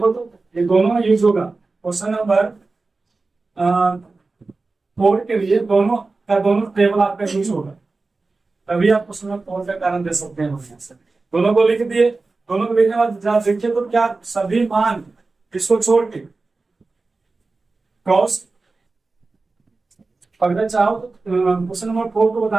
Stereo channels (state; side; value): quieter; left; 3.7 dB